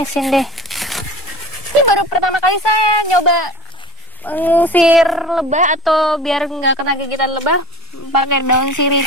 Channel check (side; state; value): both; normal; correlation 0.37